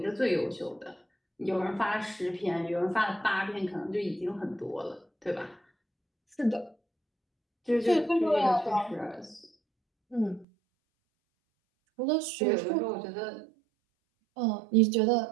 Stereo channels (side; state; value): left; drops out; at 10.5 s